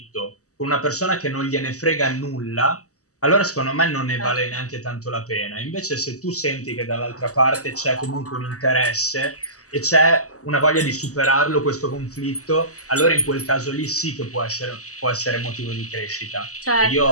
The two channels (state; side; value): late; right; 0.66 ms